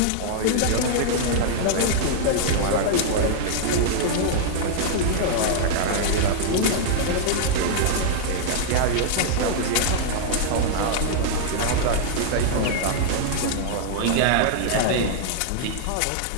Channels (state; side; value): different; both; correlation -0.01